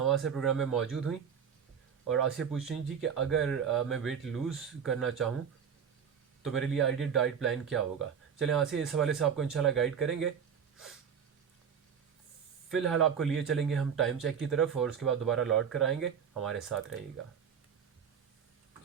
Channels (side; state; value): left; quieter; 7.4 dB